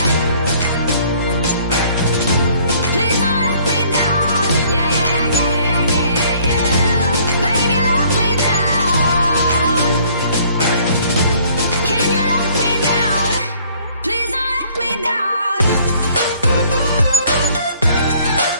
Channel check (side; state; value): both; inverted; correlation -0.59